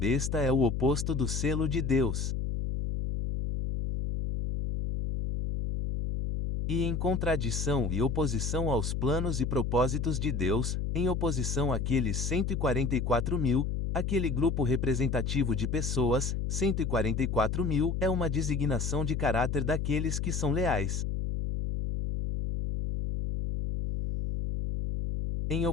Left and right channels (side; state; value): left; noise; hum, 1 dB below the sound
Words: é o oposto do selo de Deus. E em contradição e oposição aos planos e propósitos de Deus, em oposição àqueles 144.000, aquele grupo representativo de pessoas, 144.000, é uma designação de caráter daqueles que são leais. Em